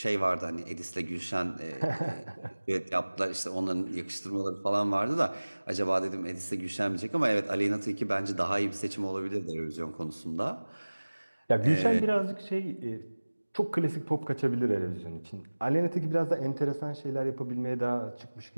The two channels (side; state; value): both; inverted; correlation -1.00